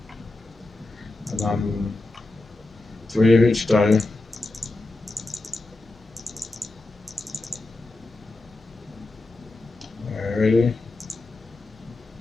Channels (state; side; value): quieter; right; 3.0 dB